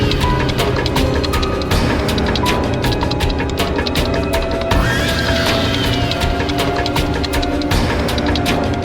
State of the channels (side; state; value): both; identical; correlation 1.00